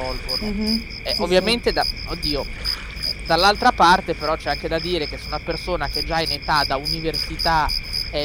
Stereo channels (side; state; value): both; identical; correlation 1.00